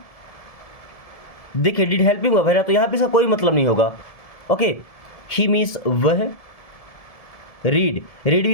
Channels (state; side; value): late; right; 1.7 ms